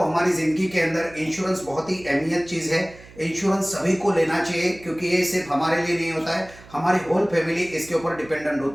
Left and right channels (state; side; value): noise; right; hum, 21 dB below the sound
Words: जिंदगी के अंदर इंश्योरेंस बहुत ही अहमियत चीज है। इंश्योरेंस सभी को लेना चाहिए, क्योंकि ये सिर्फ हमारे लिए नहीं होता है, हमारी होल फैमिली इसके ऊपर डिपेंडेंट